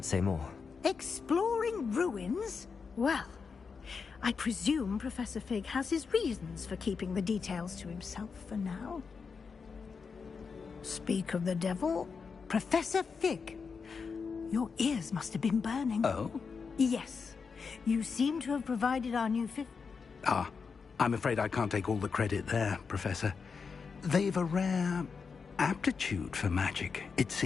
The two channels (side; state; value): right; quieter; 5.4 dB